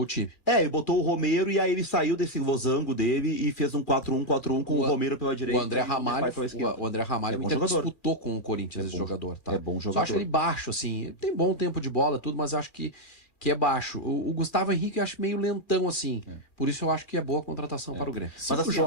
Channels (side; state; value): right; late; 2.3 ms